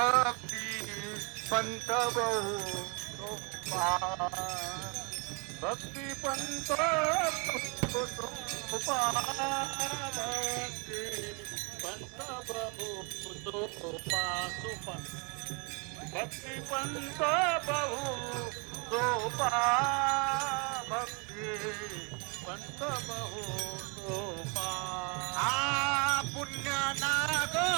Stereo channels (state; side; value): quieter; left; 33.6 dB